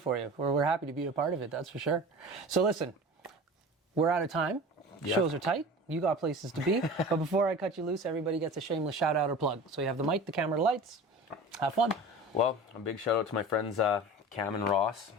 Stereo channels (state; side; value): normal; both; correlation 0.36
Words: for you. We're happy to be a part of it. That's for sure. So listen, we're out of time. Yep. Shows are tight. You got places to be. But before I cut you loose, everybody gets a shameless shout out or plug. So you have the mic, the camera, the lights. Have fun. Well, a big shout out to my friends Cam and Ross,